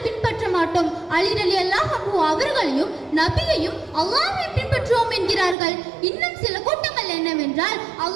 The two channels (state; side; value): drops out; left; at 5.6 s